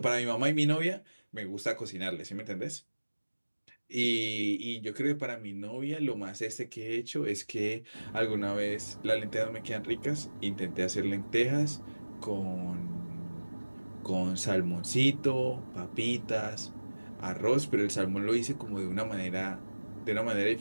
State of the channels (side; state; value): both; inverted; correlation -1.00